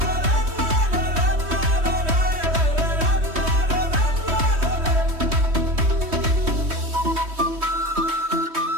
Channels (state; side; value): late; left; 3.1 ms